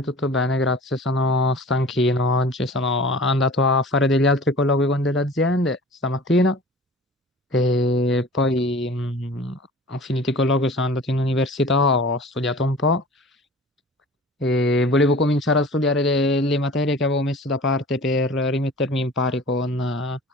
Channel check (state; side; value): normal; both; correlation 0.43